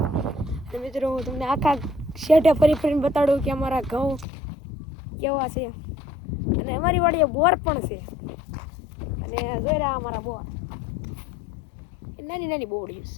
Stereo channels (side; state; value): right; drops out; at 4.2 s